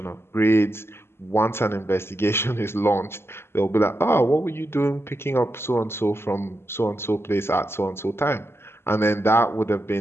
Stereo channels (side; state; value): right; late; 0.12 ms